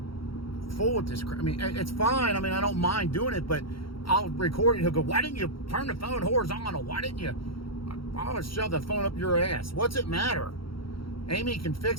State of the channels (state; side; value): late; right; 0.74 ms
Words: fool with this. I mean, it's fine. I mean, I don't mind doing it, but I'll record it. He'll go, why didn't you turn the phone horizontal? Why didn't you? I'll shove the phone up your ass. What's it matter? Amy can